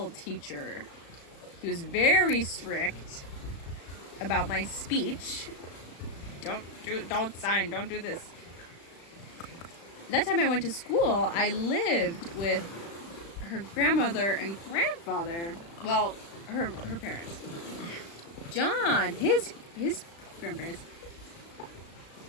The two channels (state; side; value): late; right; 35 ms